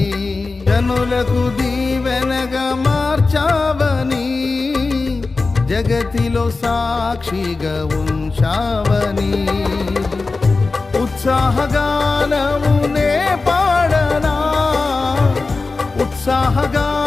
జనులకు దీవెనగా మార్చావని, జగతిలో సాక్షిగా ఉంచావని, ఉత్సాహగానమునే పాడనా,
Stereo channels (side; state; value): right; quieter; 3.8 dB